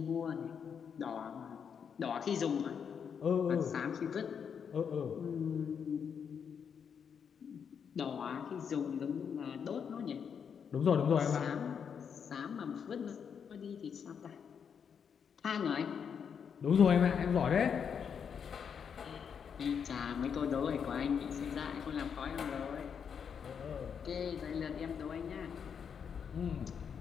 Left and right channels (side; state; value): right; quieter; 7.1 dB